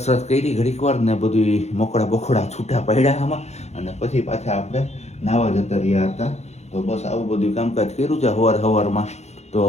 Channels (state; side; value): late; right; 0.32 ms